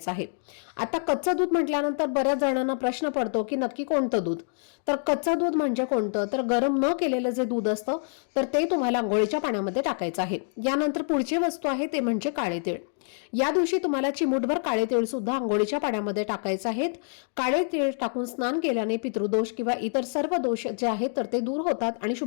आहे। आता कच्चं दूध म्हटल्यानंतर बऱ्याच जणांना प्रश्न पडतो की नक्की कोणतं दूध, तर कच्चं दूध म्हणजे कोणतं, तर गरम न केलेलं जे दूध असतं तर ते तुम्हाला अंघोळीच्या पाण्यामध्ये टाकायचं आहे। यानंतर पुढची वस्तू आहे ते म्हणजे काळे तीळ। या दिवशी तुम्हाला चिमूटभर काळे तीळ सुद्धा अंघोळीच्या पाण्यामध्ये टाकायचे आहेत। काळे तीळ टाकून स्नान केल्याने पितृदोष किंवा इतर सर्व दोष जे आहेत तर ते दूर होतात आणि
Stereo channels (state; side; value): silent; right; digital silence